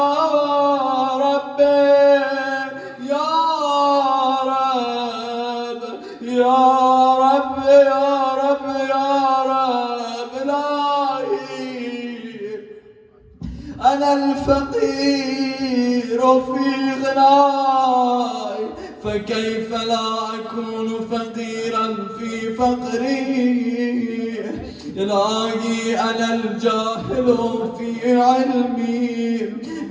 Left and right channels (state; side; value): identical; both; correlation 1.00